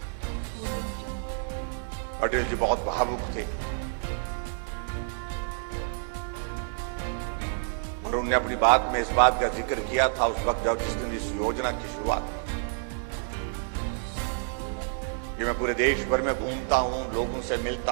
अटल जी बहुत भावुक थे और उन्होंने अपनी बात में इस बात का जिक्र किया था उस वक्त जब जिस दिन इस योजना की शुरुआत हुई। कि मैं पूरे देश भर में घूमता हूं, लोगों से मिलता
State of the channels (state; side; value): silent; left; digital silence